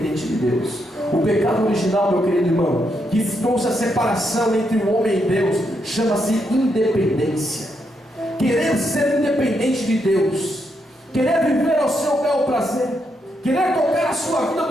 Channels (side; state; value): both; normal; correlation 0.80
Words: de Deus. O pecado original, meu querido irmão, que trouxe a separação entre o homem e Deus, chama-se independência. Querer ser independente de Deus, querer viver ao seu bel prazer, querer tocar a sua vida